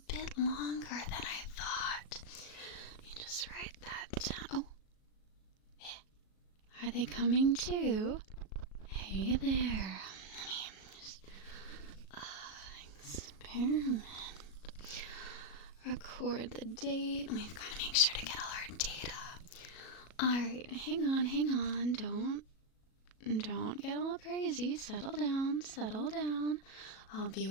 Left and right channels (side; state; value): right; late; 37 ms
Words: bit longer than I thought. Let me just write that down. Oh, are they coming too? Hey there. Let me just experiment. Record the date. We've got to make sure to get all our data. Alright, hang on. Don't get all crazy. Settle down. I'll be